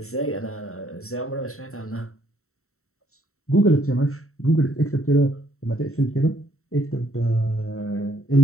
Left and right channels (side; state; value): right; late; 0.63 ms